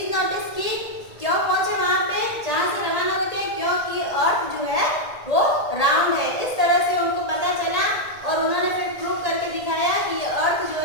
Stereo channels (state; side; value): late; right; 1.8 ms